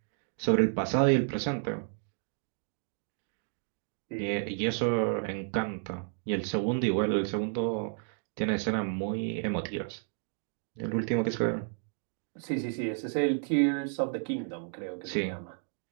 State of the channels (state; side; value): silent; left; 57 dB below the other